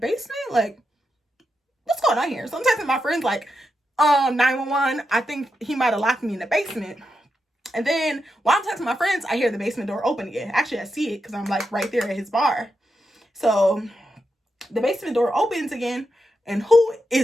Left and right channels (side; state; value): both; normal; correlation 0.86